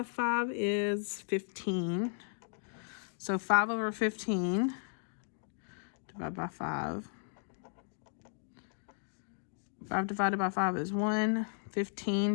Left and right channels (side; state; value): right; silent; digital silence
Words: 5 is 15. So 5 over 15 divided by 5. 5 divided by 5 is 1.